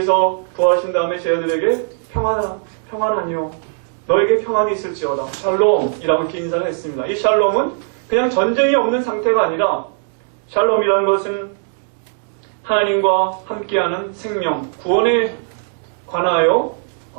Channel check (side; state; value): left; silent; digital silence